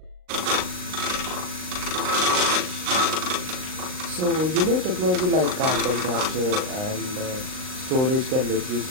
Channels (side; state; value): left; late; 39 ms